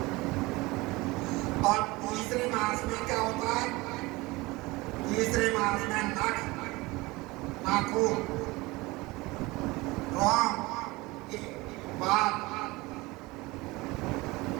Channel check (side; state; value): left; quieter; 22.1 dB